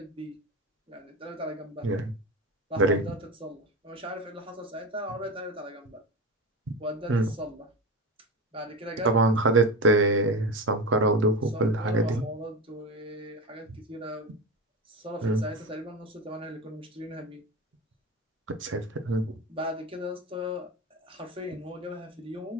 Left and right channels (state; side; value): normal; both; correlation 0.23